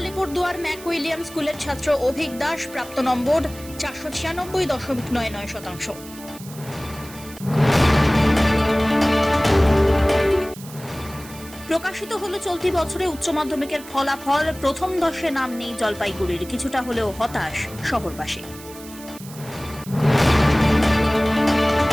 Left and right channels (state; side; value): noise; right; hiss, 17 dB below the sound